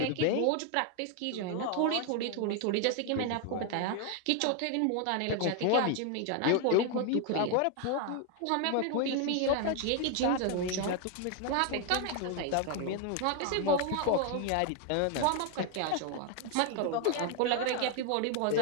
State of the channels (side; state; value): both; different; correlation 0.01